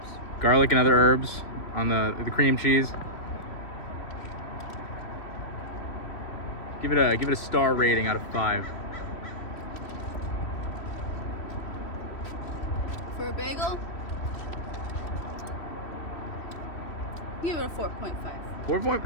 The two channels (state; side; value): late; right; 3.1 ms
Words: Garlic and other herbs on the cream cheese. Give it a star rating out of 5. For a bagel, give it a 4.5. 4 point.